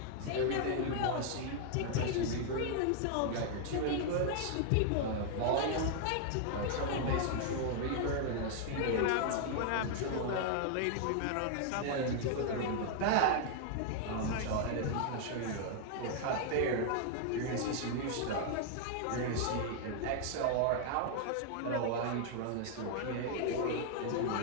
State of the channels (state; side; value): different; both; correlation 0.00